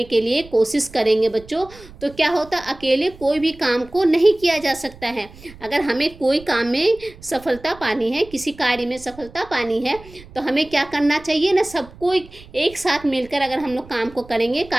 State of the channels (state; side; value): noise; right; rumble, 20 dB below the sound